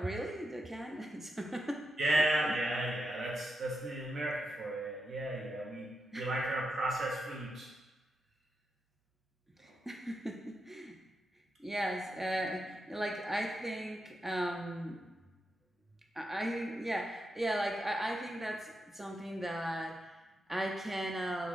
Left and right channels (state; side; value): normal; both; correlation 0.86